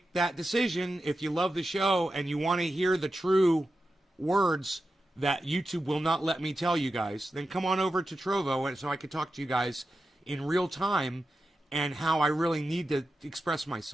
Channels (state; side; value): normal; both; correlation 0.91